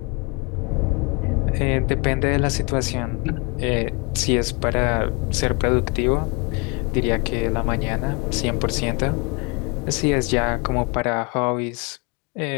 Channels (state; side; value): quieter; right; 28.9 dB